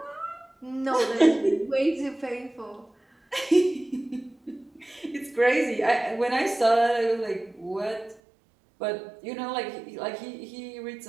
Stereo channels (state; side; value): drops out; left; at 8.2 s